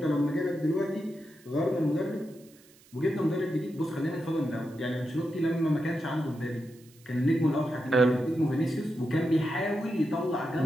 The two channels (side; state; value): right; noise; hiss, 27 dB below the sound